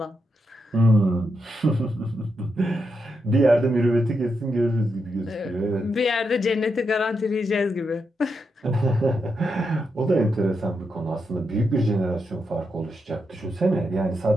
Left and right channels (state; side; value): normal; both; correlation 0.84